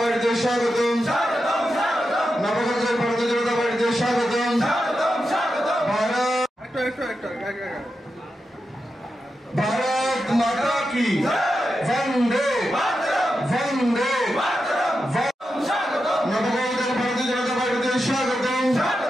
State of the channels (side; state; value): both; normal; correlation 0.89